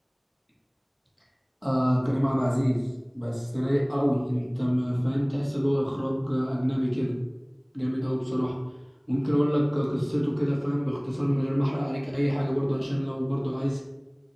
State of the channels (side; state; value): both; identical; correlation 1.00